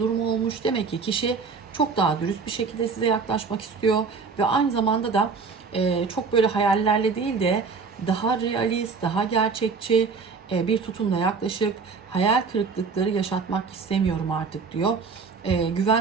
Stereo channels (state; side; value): quieter; left; 5.0 dB